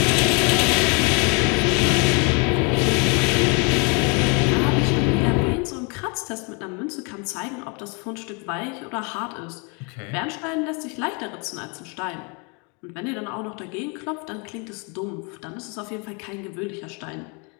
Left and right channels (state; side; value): quieter; right; 33.5 dB